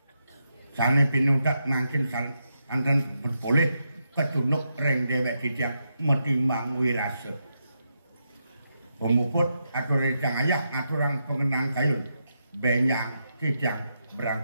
sane pinutat makin anten berboleh ketunuk reng dewek dijang metimbang wirase pemuput atur rejang ayah aturang pengenang kayun benyang dijang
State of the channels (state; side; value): inverted; both; correlation -0.83